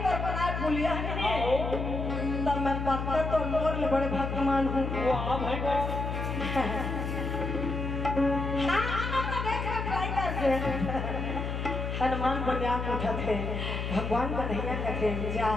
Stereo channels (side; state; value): left; noise; hum, 3 dB below the sound